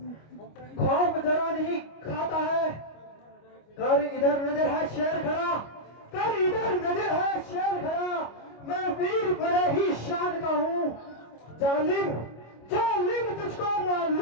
खौफ जरा नहीं खाता है। कर इधर नजर है शेर खड़ा, कर इधर नजर है शेर खड़ा। मैं वीर बड़े ही शान का हूँ। जालिम जालिम तुझको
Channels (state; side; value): late; right; 25 ms